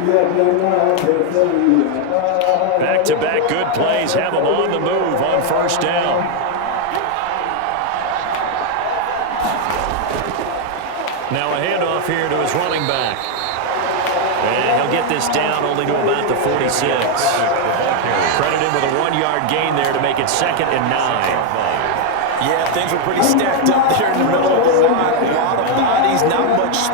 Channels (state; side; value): different; both; correlation 0.01